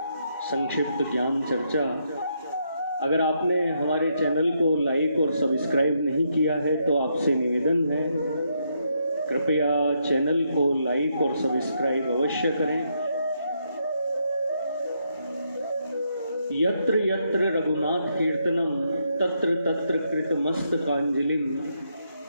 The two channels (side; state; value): both; inverted; correlation -0.78